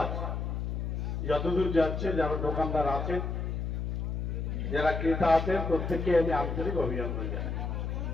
যতদূর যাচ্ছে, যারা দোকানদার আছেন, যারা ক্রেতা আছেন, প্রত্যেককে আমি আন্তরিক অভিনন্দন জানাই।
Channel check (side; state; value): left; noise; hum, 2 dB below the sound